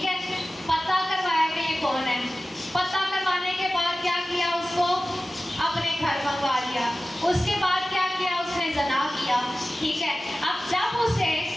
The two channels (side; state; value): both; normal; correlation 0.96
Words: है, पता करवाया कि ये कौन है। पता करवाने के बाद क्या किया, उसको अपने घर मंगवा लिया। उसके बाद क्या किया, उसने ज़ना किया, ठीक है। अब जब उसे